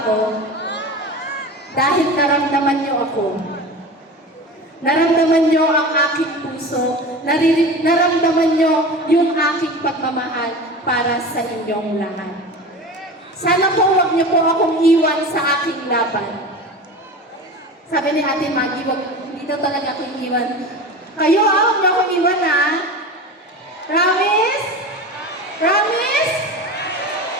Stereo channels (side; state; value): both; normal; correlation 0.31